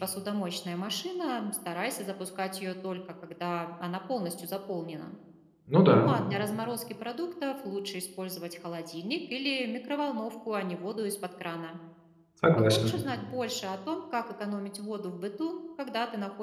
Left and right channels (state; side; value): identical; both; correlation 1.00